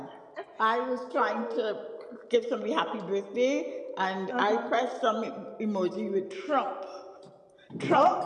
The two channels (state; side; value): identical; both; correlation 1.00